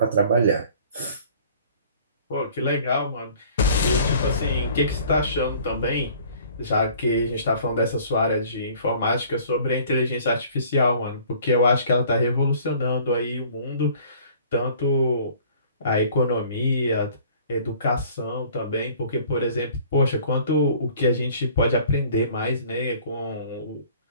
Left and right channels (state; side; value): inverted; both; correlation -0.52